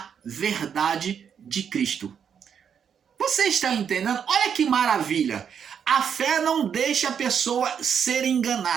verdade de Cristo. Você está entendendo? Olha que maravilha! A fé não deixa a pessoa ser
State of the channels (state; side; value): quieter; left; 7.6 dB